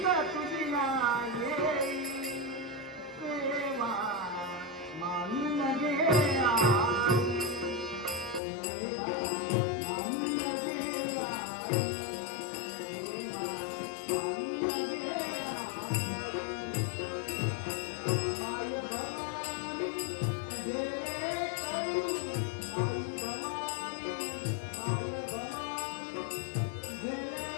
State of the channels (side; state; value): right; drops out; at 8.4 s